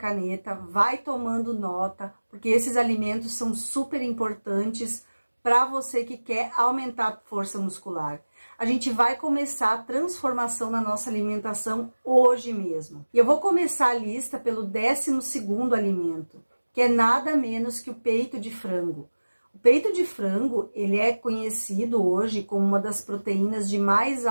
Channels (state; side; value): inverted; both; correlation -1.00